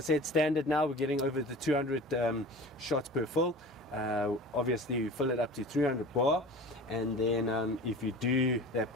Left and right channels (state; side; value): normal; both; correlation 0.38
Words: standard now, we're getting over the 200 shots per fill. Obviously, you fill it up to 300 bar, and then if you do that